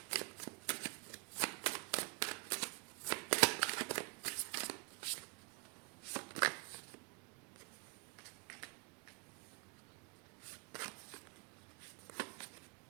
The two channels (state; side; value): quieter; left; 31.2 dB